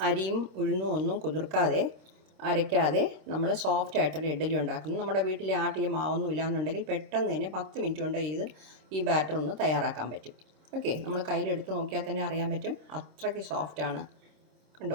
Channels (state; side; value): late; left; 26 ms